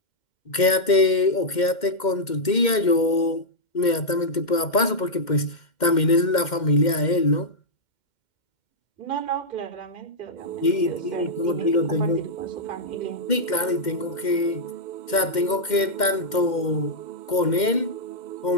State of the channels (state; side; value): late; right; 2.1 ms